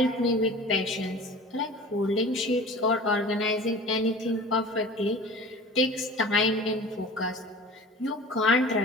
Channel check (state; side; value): normal; both; correlation 0.40